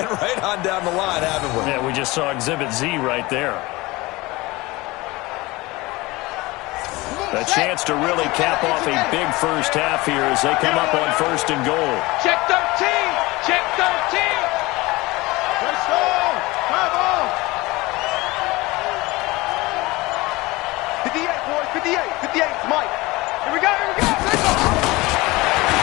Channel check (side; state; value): right; quieter; 21.7 dB